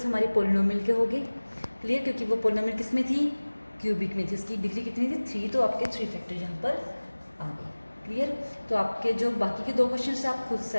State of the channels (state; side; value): inverted; both; correlation -1.00